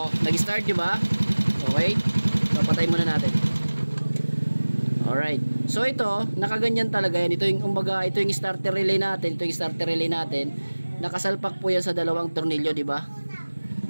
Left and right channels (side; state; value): both; inverted; correlation -1.00